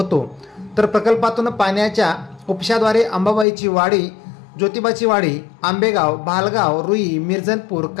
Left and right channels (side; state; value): right; drops out; at 3.5 s